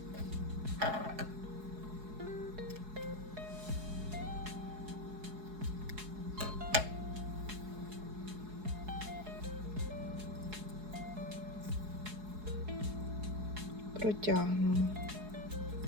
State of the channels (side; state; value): left; late; 4.7 ms